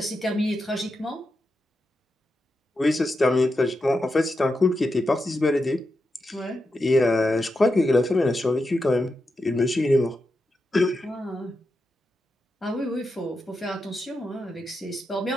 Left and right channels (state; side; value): normal; both; correlation 0.87